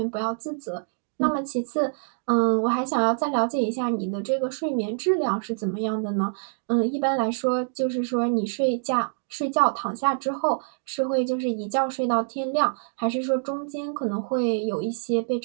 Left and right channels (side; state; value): left; silent; digital silence